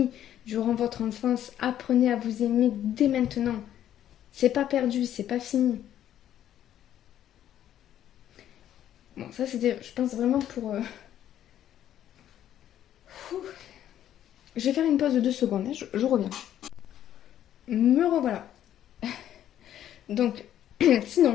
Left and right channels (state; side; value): quieter; right; 11.2 dB